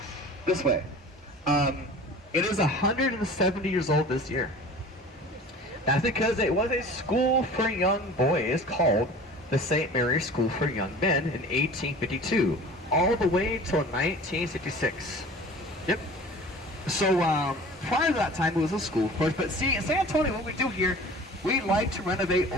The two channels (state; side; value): normal; both; correlation 0.41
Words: this way. It is 170 years old this year. That's because it was a school for young boys called the St. Mary's School for Young Men in 1852, all the way till 1966. Yep. So prior to that time, it was a school, of course. But see, in San Antonio, what we do here, we like to renovate